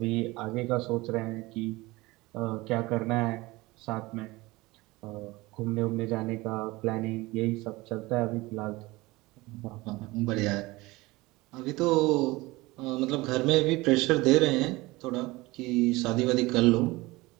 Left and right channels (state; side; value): quieter; left; 21.3 dB